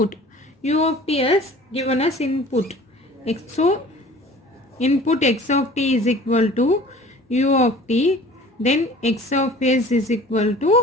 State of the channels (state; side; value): normal; both; correlation 0.46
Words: U of t has given us input. So input x of t is equal to u of t, then x of s is equal